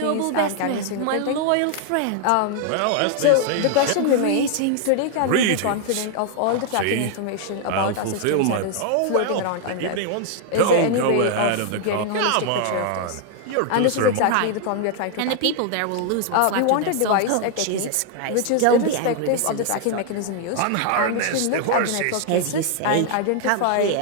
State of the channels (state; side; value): different; both; correlation 0.00